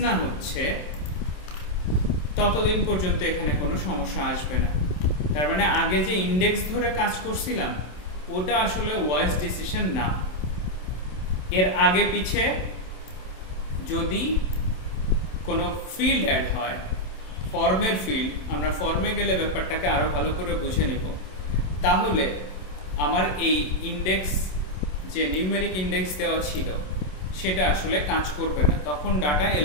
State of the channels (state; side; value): late; right; 27 ms